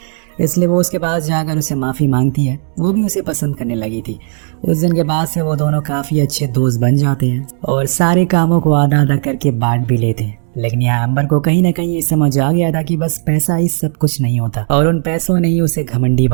इसलिए वो उसके पास जाकर उसे माफ़ी मांगती है। वो भी उसे पसंद करने लगी थी। उस दिन के बाद से वो दोनों काफ़ी अच्छे दोस्त बन जाते हैं और सारे कामों को आधा आधा करके बांट भी लेते हैं। लेकिन यहाँ एम्बर को कहीं ना कहीं ये समझ आ गया था कि बस पैसा ही सब कुछ नहीं होता, और उन पैसों ने ही उसे घमंडी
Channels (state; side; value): silent; left; 56 dB below the other